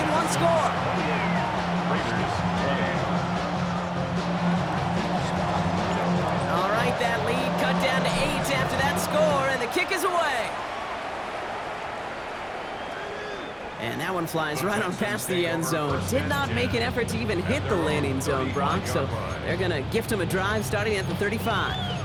one score. All right, that lead cut down to 8 after that score, and the kick is away. And that one flies right on past the end zone. Did not make an effort to even hit the landing zone, Brock, so they're going to gift him a drive starting at the 35.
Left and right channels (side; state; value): both; identical; correlation 1.00